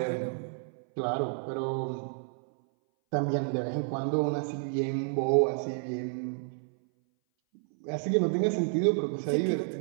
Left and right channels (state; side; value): silent; left; 58 dB below the other